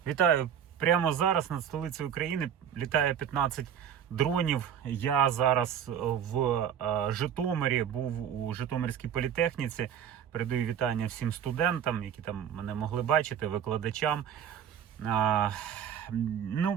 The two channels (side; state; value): left; quieter; 8.9 dB